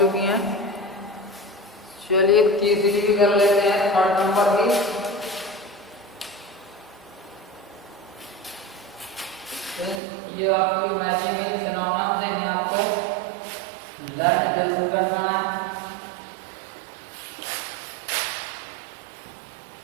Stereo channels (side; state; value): left; drops out; at 10.0 s